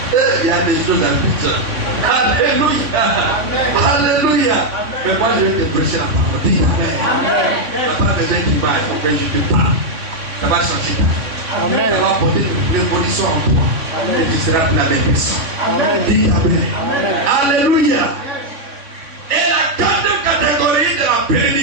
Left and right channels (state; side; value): late; left; 3.6 ms